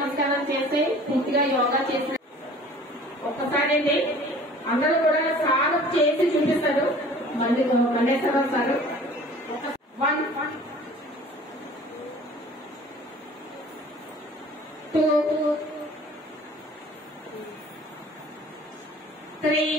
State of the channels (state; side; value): normal; both; correlation 0.48